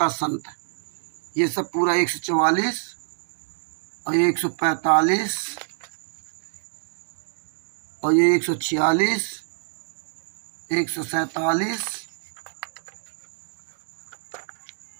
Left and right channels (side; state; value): left; silent; digital silence